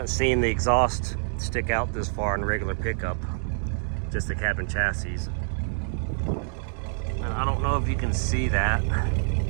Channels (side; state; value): left; silent; digital silence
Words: seen the exhaust stick out this far in a regular pickup, just the cabin chassis. And I don't know if you can see that.